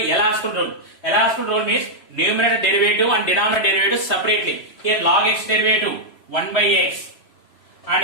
L-Hospital rule. L-Hospital rule means numerator derivative and denominator derivative separately. Here log x derivative 1 by x and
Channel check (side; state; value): right; late; 3.0 ms